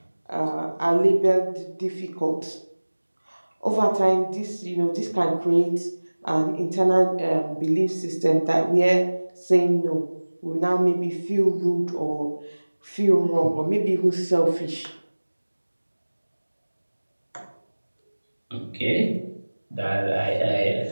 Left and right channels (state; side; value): inverted; both; correlation -1.00